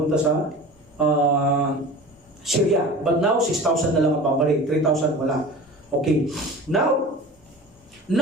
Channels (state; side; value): normal; both; correlation 0.37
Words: sa Syria. But now, 6,000 na lang ang pabalik. 3,000 wala. Okay. Now,